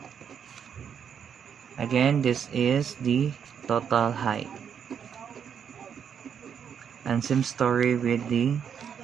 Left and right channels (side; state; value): left; quieter; 7.8 dB